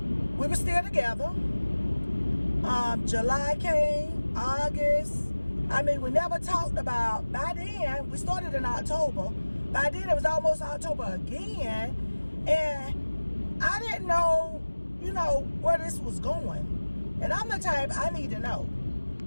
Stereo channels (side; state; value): both; inverted; correlation -1.00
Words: We were still together. July came, August. I mean, we never talked about, by then, we started in October. By then, it was almost October again. And I didn't know, where this was going. And I'm the type, I need to know.